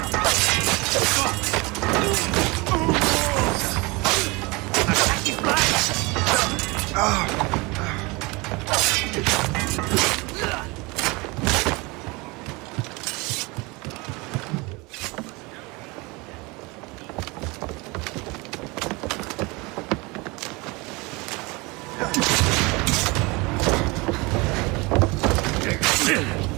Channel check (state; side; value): quieter; left; 25.6 dB